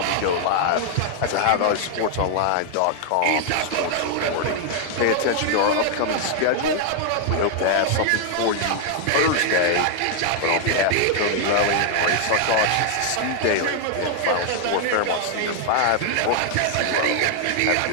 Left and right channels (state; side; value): different; both; correlation 0.00